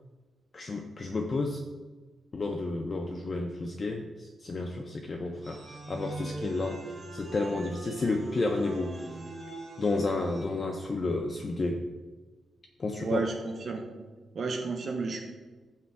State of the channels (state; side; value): normal; both; correlation 0.86